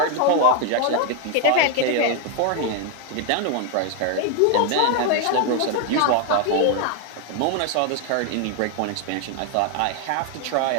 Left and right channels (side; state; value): both; different; correlation 0.01